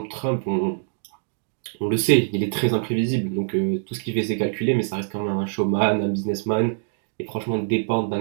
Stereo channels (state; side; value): silent; left; digital silence